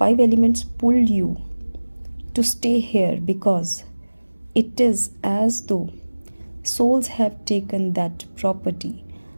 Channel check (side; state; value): both; inverted; correlation -1.00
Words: elements pull you to stay here because it is as though souls have taken that property,